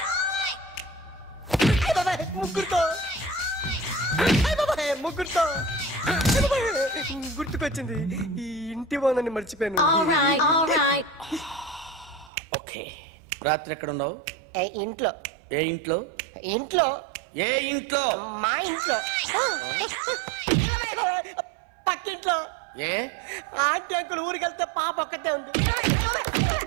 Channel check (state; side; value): drops out; left; at 12.3 s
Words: ముగ్గురుతో ముగ్గురుతో గుర్తుకొచ్చింది. ఈ ఇంటి బాగుందని మర్చిపోయాను. ఓకే. రాత్రి ఎక్కడ ఉన్నావు? ఇంట్లో. ఏ ఇంట్లో? ఇంట్లో. ఏ ఇంట్లో? మా ఇంట్లో. పక్కింట్లో. ఏ ఆంటీ అంకుల్ ఊరికి వెళ్తే పాప ఒక్కతే ఉంది.